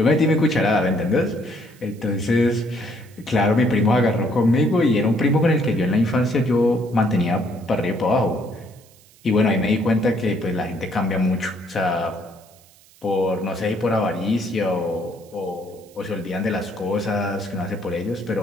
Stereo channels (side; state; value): right; noise; hiss, 27 dB below the sound